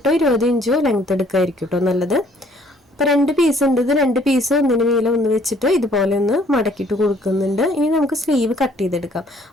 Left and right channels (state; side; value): normal; both; correlation 0.61